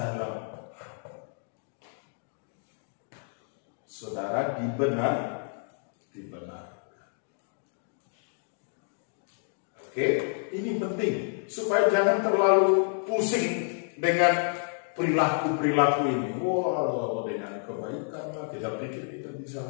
saudara dibenarkan. Oke, ini penting supaya jangan terlalu pusing dengan perilaku ini. Wah, dengan kebaikan lah, kita pikir kita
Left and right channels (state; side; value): silent; right; 58 dB below the other